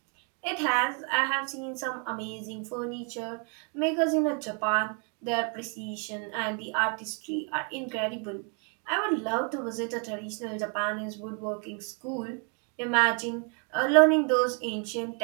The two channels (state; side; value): quieter; left; 38.9 dB